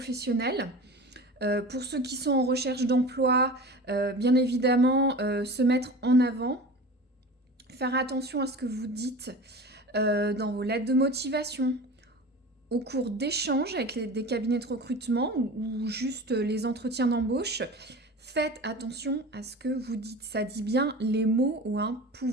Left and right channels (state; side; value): normal; both; correlation 0.35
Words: pour ceux qui sont en recherche d'emploi, bien évidemment, se mettre en avant, faire attention à ce que vous dites dans vos lettres de motivation, au cours d'échanges avec des cabinets de recrutement ou juste les entretiens d'embauche. Faites attention à ce que vous dites. Ça dit bien, les mots ont un